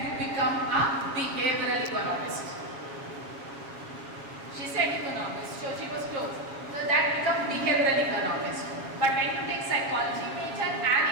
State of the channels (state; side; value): late; left; 7.3 ms